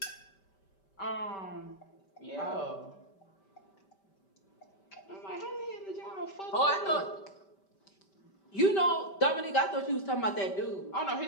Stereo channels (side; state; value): right; late; 5.1 ms